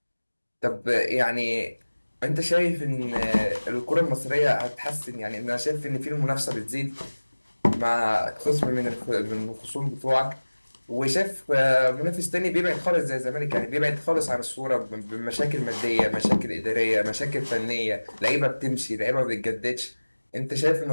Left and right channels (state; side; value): inverted; both; correlation -1.00